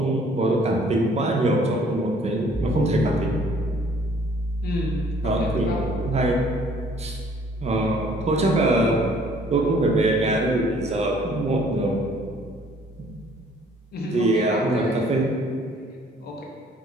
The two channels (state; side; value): normal; both; correlation 0.58